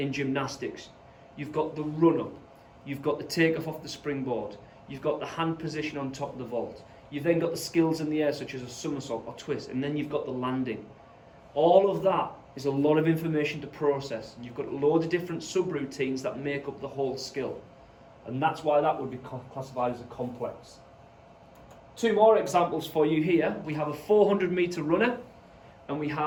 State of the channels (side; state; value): both; identical; correlation 1.00